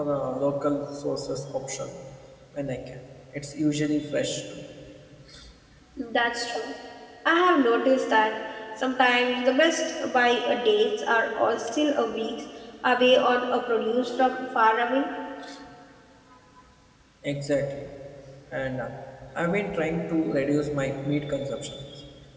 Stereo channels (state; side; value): identical; both; correlation 1.00